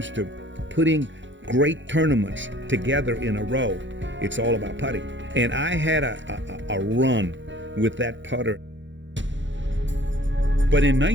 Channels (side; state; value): left; late; 0.54 ms